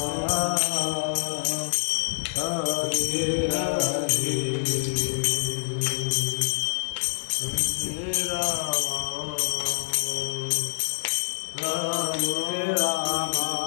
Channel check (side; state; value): right; silent; digital silence